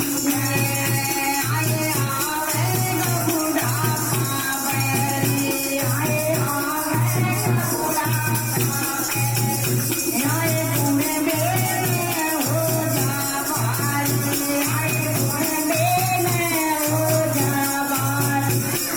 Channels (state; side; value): noise; left; rumble, 24 dB below the sound